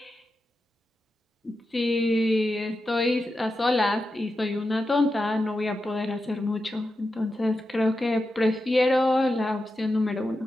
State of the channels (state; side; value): normal; both; correlation 0.90